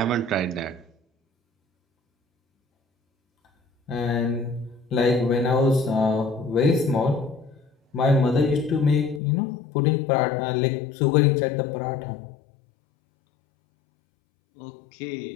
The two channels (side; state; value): right; drops out; at 9.2 s